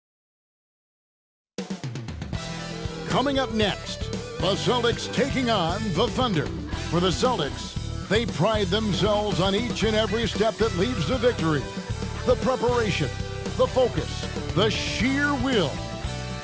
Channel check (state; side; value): identical; both; correlation 1.00